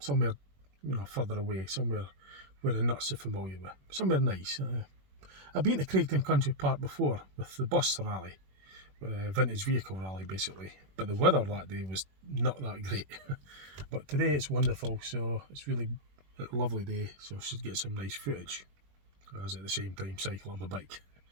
you know, further away, somewhere where I'm not so familiar with, somewhere nice. I've been to Craigtoun Country Park before with the bus rally, vintage vehicle rally basically, but the weather that day was not that great. But today it's wonderful, so it's really a lovely day, so I should get some nice footage as at the same time cycle on my bike.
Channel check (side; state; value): left; late; 21 ms